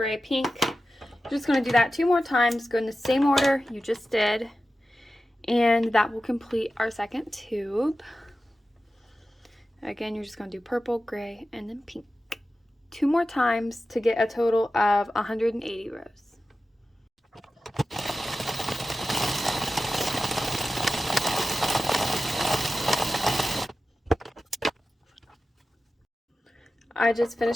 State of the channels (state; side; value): normal; both; correlation 0.94